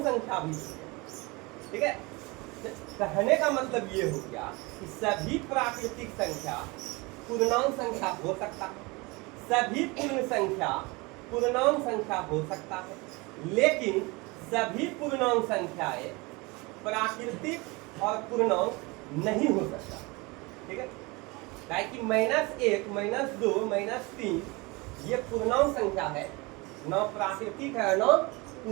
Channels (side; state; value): left; quieter; 25.4 dB